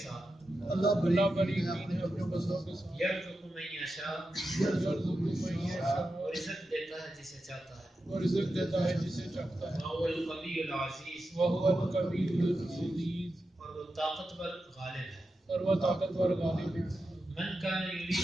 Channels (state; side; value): normal; both; correlation 0.90